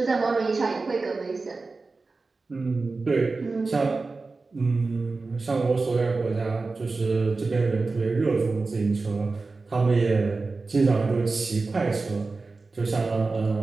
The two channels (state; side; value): quieter; left; 3.8 dB